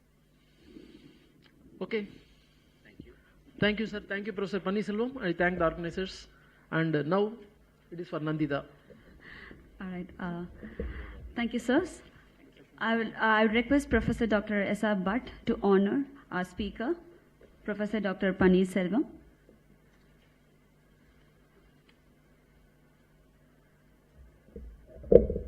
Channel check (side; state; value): both; identical; correlation 1.00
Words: Okay. Thank you. Thank you, sir. Thank you, Professor Pannirselvam. I thank the organizers. And now it is for Nandita. All right. Thank you, sirs. I would request Professor Dr. S.R. Bhatt to honor our speaker, Professor Dr. Pannirselvam.